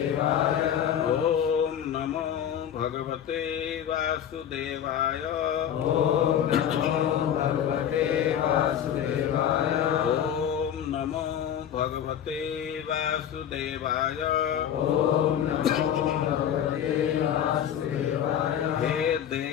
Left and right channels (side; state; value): right; quieter; 9.5 dB